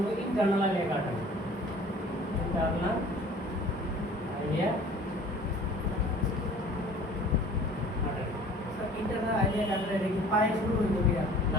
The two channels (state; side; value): normal; both; correlation 0.48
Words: internal iliac artery. Internal iliac artery. Internal iliac artery কি পায়ে শুরু হইব কি